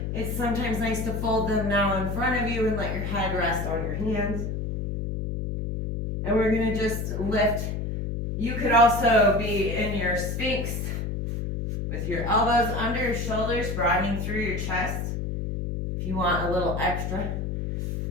it's sometimes nice to fold them now in front of you and let your head rest on your hands. And we're going to just lift You could also be in your Sphinx with your elbows under your shoulders, broadening through your chest if you want a little extra.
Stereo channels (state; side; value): noise; left; hum, 3 dB below the sound